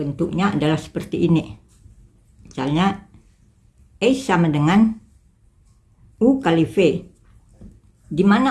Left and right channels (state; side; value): identical; both; correlation 1.00